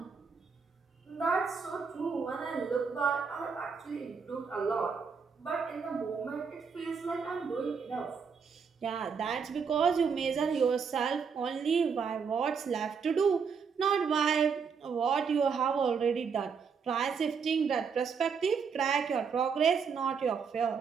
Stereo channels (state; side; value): quieter; left; 6.0 dB